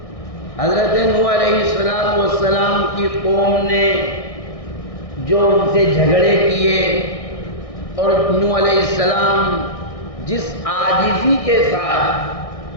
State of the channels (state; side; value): late; right; 1.6 ms